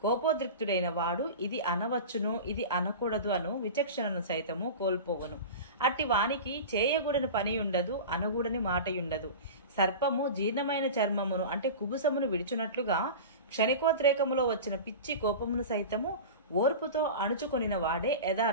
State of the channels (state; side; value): inverted; both; correlation -0.30